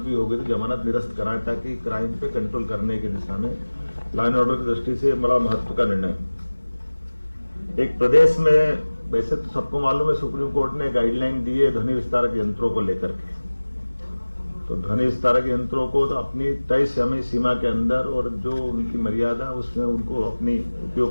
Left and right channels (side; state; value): both; inverted; correlation -1.00